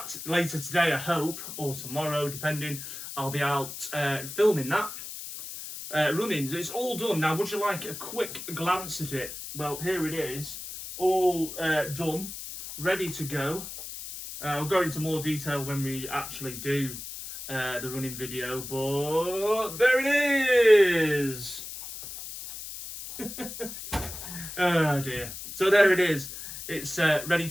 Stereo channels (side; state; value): left; noise; hiss, 10 dB below the sound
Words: later today, I hope, or tomorrow, depending, I'll be out filming that, running. It's all done. Now, would you like a quick glance at it? Well, here it is, all done, ready to go. I'll go into more detail when we actually do the running video, but there it is. Oh dear. So there it is. It's ready